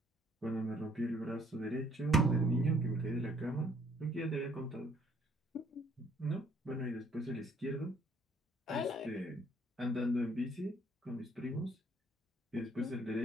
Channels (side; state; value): both; normal; correlation 0.63